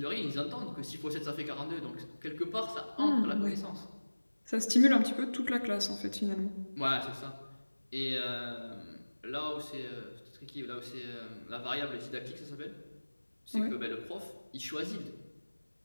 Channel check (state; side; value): inverted; both; correlation -1.00